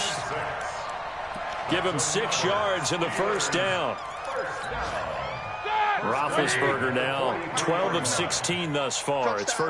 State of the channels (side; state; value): both; identical; correlation 1.00